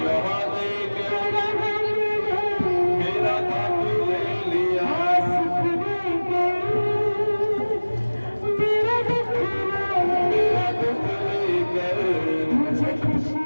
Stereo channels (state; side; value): inverted; both; correlation -1.00